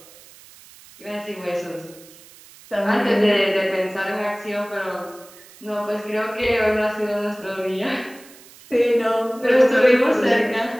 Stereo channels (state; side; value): noise; right; hiss, 22 dB below the sound